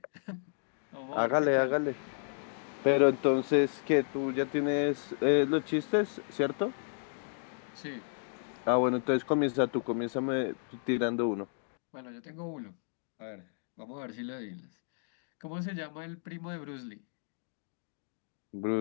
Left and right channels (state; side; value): silent; right; digital silence